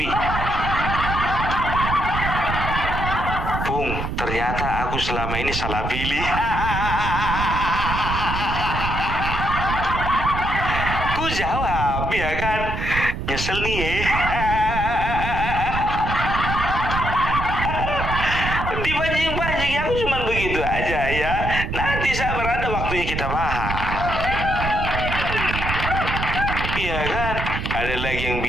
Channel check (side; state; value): right; noise; rumble, 3 dB below the sound